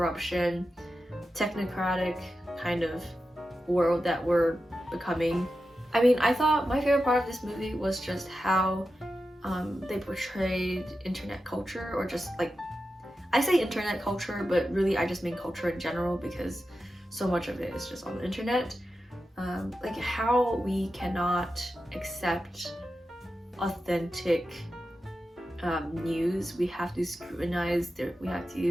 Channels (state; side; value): normal; both; correlation 0.91